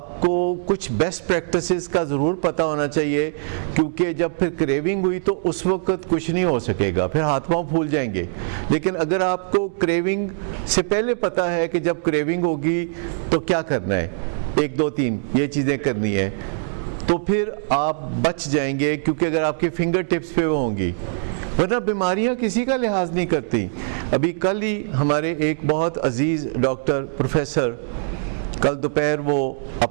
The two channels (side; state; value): left; silent; digital silence